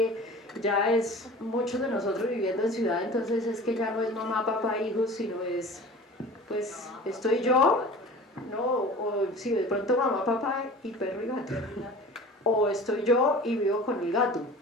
ya es muchos de nosotros viviendo en ciudad, entonces es que ya no es mamá, papá, hijos, sino es, pues, estoy yo, ¿no? O si de pronto mamá, papá y perro y gato. O estoy yo y vivo con el gato,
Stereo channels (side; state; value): both; normal; correlation 0.40